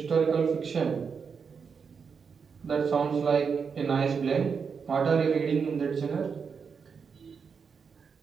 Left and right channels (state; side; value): quieter; left; 5.9 dB